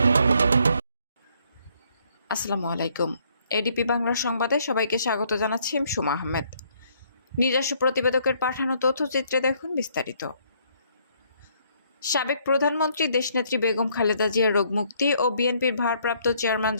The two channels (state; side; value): inverted; both; correlation -0.67